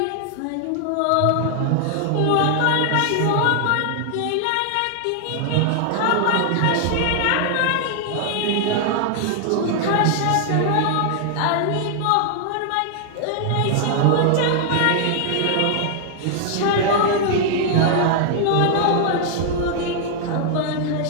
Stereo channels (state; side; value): different; both; correlation 0.00